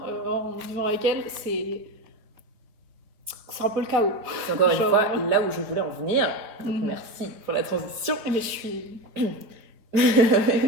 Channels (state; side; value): late; left; 4.4 ms